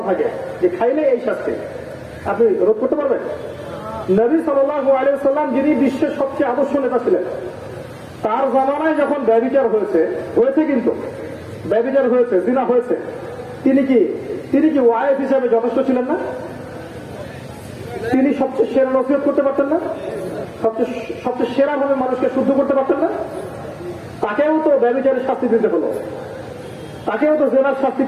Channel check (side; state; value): both; identical; correlation 1.00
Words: থাকে যে খাইলে এই শাস্তি, আপনি রোধ করতে পারবেন? নবী সাল্লাল্লাহু আলাইহি ওয়াসাল্লাম যিনি বিশ্বের সবচেয়ে আদর্শ নেতা ছিলেন, তার জামানায় যখন ব্যভিচার হয়েছে, কিন্তু ব্যভিচার হয়েছে, জিনা হয়েছে, তিনি কি ওয়াইফ হিসাবে যথেষ্ট ছিলেন না? তিনি সবচেয়ে সেরা নসিহত করতে পারতেন না? সবচেয়ে সেরা ভাবে মানুষকে শুদ্ধ করতে পারতেন না? তাকেও তো ব্যভিচারের শাস্তি দিতে হলো, তাকেও তো জেনার শাস্তি